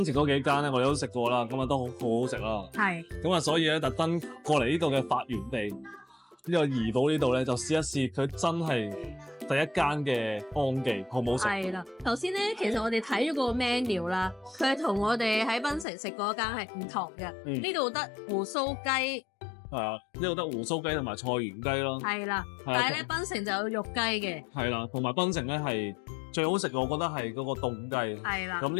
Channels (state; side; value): drops out; right; at 15.9 s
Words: 城嗰幾間咧，我哋都食過啦，咁啊都好好食啦。係。咁啊，所以咧特登過嚟呢度嘅發源地。呢個怡保呢度咧，就試一試佢真係第一間嘅安記，好唔好食？係啦，頭先咧，其實我哋睇咗個 menu 啦，佢係同我哋喺檳城食嗰間係唔同嘅。呢度得胡鬚雞，係啊，呢度得胡鬚雞同埋菜園雞咯。係啦，但係咧檳城就有肉雞嘅。係啦，同埋檳城咧係最好食嘅，我覺得係嗰個凍雞。係啦，咁